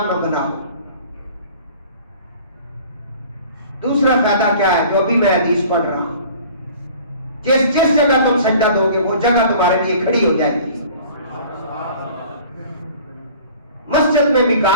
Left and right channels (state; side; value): inverted; both; correlation -0.47